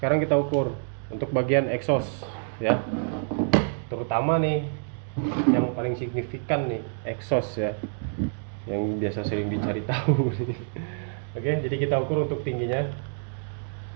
kita ukur untuk bagian exhaust ya. Terutama nih yang paling signifikan nih, exhaust ya. Yang biasa sering dicari tahu. Oke, jadi kita ukur untuk tingginya.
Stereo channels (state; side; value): silent; left; digital silence